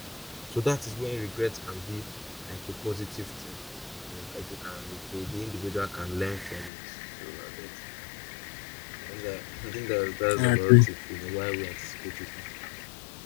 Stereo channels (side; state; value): right; drops out; at 6.7 s